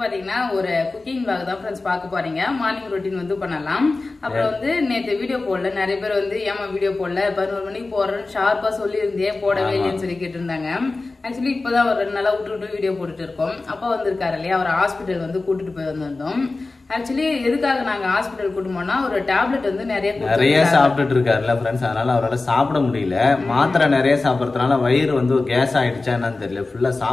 ஒரு குக்கிங் vlog தான் ஃப்ரெண்ட்ஸ் பார்க்க போறீங்க. மார்னிங் ரொட்டீன் வந்து பண்ணலாம். அப்புறம் வந்து நேத்து வீடியோ போடல, நிறைய பேர் வந்து ஏமா வீடியோ போடல 11 மணிக்கு போறேன்னு ஷார்ப்பா சொல்லி இருந்தேன், போடவே இல்லைன்னு சொல்லி கேட்டு இருந்தாங்க. ஆக்சுவலி இப்பதான் ஒரு 2 நாளா விட்டு வீடியோ போட்டுட்டு இருக்கோம். அப்பா வந்திருக்காரு இல்லையா, அவர் ஹாஸ்பிட்டல் வந்து கூட்டிட்டு போய் வந்திருந்தோம். ஆக்சுவலி எதுக்காக நாங்க ஹாஸ்பிட்டல் கூட்டு போனா, ஒரு டேப்லெட் வந்து நிறைய சாப்பிட்டுட்டு இருக்காருல்ல ஃப்ரெண்ட்ஸ், அதனால அவரால் சாப்பிட முடியல. மாத்திரை நிறைய சாப்பிடறதுனால வயிறு வந்து கேஸ் ஆயிடுச்சா என்னன்னு தெரியல, ஃபுல்லா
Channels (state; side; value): quieter; right; 3.4 dB